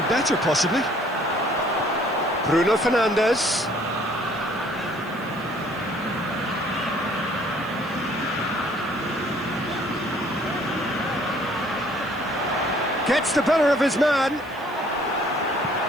better, possibly. Bruno Fernandes. Gets the better of his man.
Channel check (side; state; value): left; noise; hiss, 26 dB below the sound